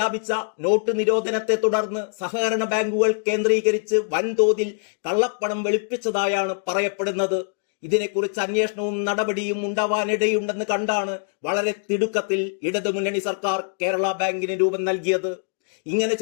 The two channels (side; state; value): right; silent; digital silence